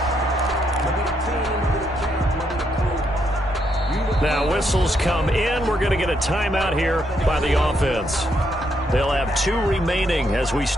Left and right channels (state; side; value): normal; both; correlation 0.76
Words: Now whistles come in. We're going to get a timeout here by the offense. They'll have 2 remaining as we